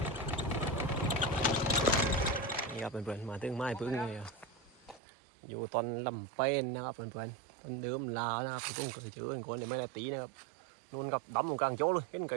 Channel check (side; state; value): left; drops out; at 5.0 s